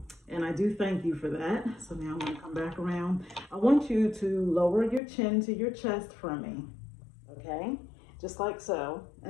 And I do thank you for that. So now I'm going to come back around. I want you to lower your chin to your chest for me. Okay. Just like so.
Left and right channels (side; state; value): right; drops out; at 5.0 s